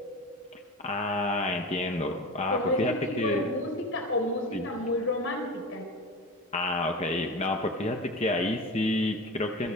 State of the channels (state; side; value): normal; both; correlation 0.29